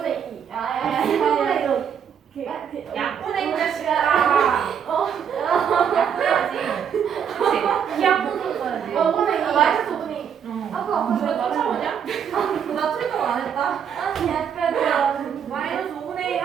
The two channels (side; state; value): left; quieter; 7.9 dB